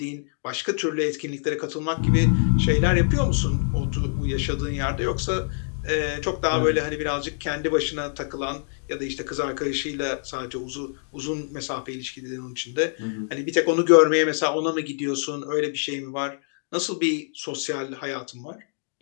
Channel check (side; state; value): right; silent; digital silence